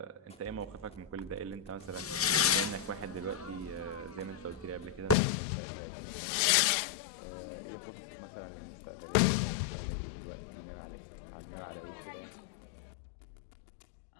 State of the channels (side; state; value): right; drops out; at 5.2 s